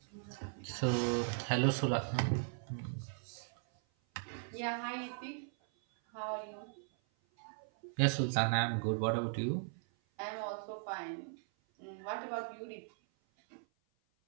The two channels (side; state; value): left; silent; 52 dB below the other